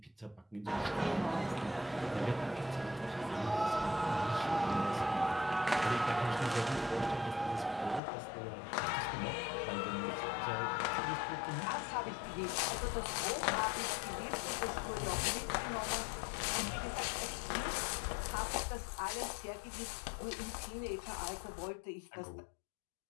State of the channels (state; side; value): drops out; right; at 8.0 s